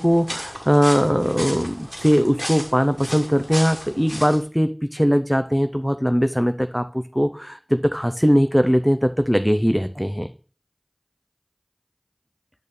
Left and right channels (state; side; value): identical; both; correlation 1.00